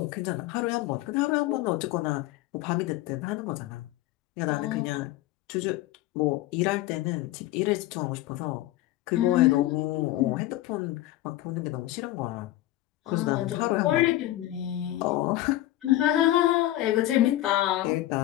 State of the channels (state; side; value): quieter; right; 15.4 dB